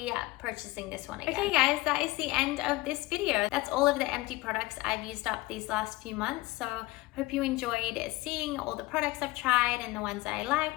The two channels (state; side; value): quieter; right; 20.1 dB